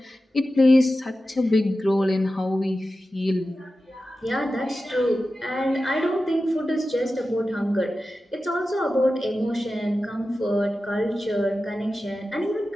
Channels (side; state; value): both; normal; correlation 0.93